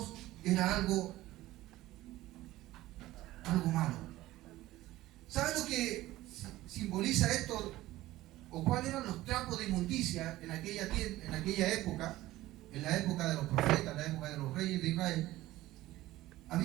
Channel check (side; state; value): left; quieter; 16.5 dB